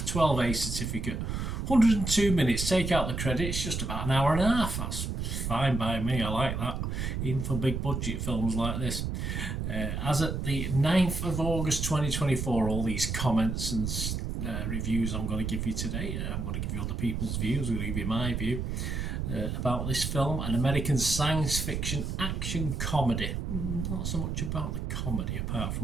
certificate, 102 minutes. Take out the credits, just about an hour and a half. That's fine by me. I like that, even for big budget films like this. As at the 9th of August 2024, all these comments and reviews I'm going to give you today, I'm going to give you other people's views, I'm going to give you my view about this film, an American science fiction action comedy. Not so much about the comedy apart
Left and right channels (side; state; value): right; noise; rumble, 2 dB below the sound